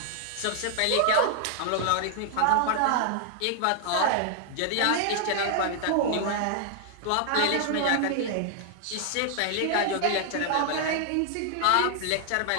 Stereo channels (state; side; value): different; both; correlation -0.01